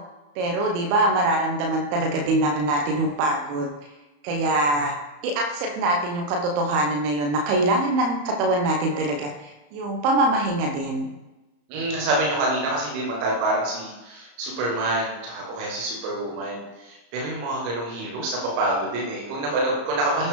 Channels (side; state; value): left; late; 34 ms